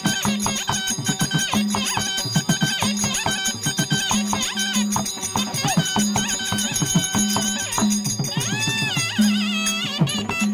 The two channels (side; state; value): both; identical; correlation 1.00